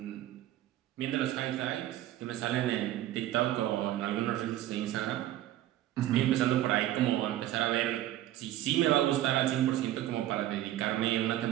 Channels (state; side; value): quieter; left; 13.6 dB